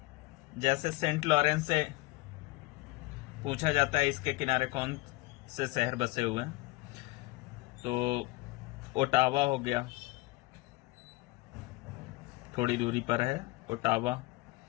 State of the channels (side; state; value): right; quieter; 21.4 dB